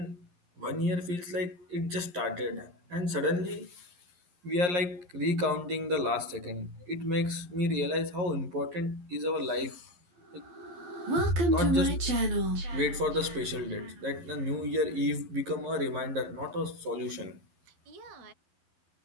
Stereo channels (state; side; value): late; left; 11 ms